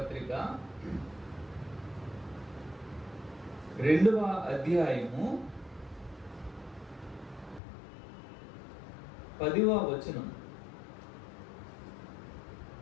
2వ అధ్యాయము 10వ వచనం.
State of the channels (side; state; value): right; drops out; at 7.6 s